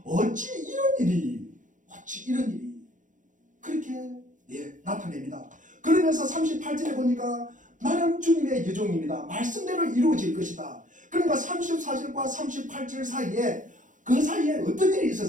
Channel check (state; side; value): late; left; 0.37 ms